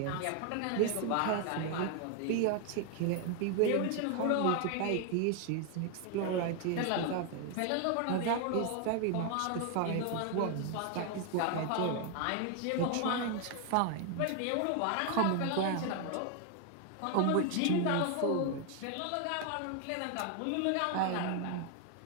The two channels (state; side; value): different; both; correlation 0.01